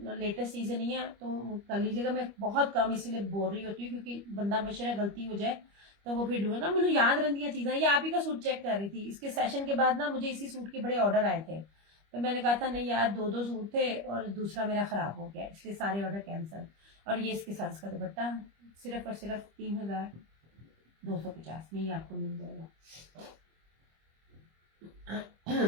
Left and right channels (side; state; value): left; late; 25 ms